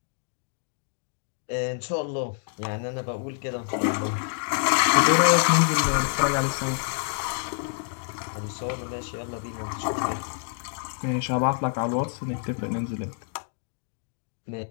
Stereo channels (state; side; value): silent; right; 60 dB below the other